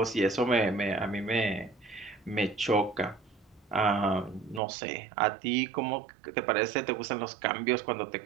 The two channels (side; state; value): left; drops out; at 4.6 s